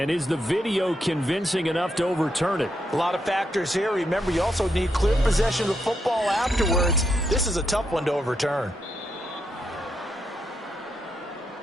is the video convincing enough to overturn it? A lot of factors here. Remember, you also need clear possession of the football afterwards. This is a tough one to overturn.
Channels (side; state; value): both; normal; correlation 0.81